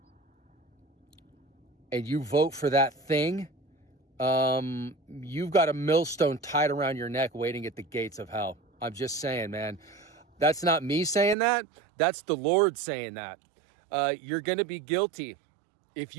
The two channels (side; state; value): left; drops out; at 11.4 s